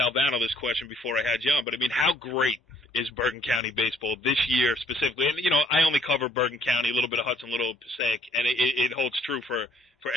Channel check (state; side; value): normal; both; correlation 0.63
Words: this question before I had you on, but I mean, how great is Bergen County baseball this year specifically? And, I only cover Bergen County, a little bit of Hudson, a little Passaic, and it holds true for